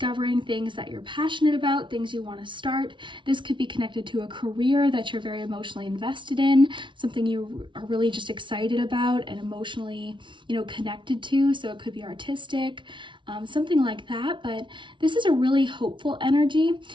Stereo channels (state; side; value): late; left; 0.24 ms